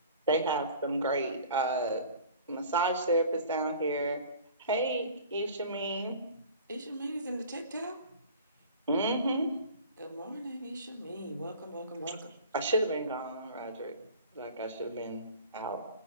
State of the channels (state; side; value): inverted; both; correlation -0.43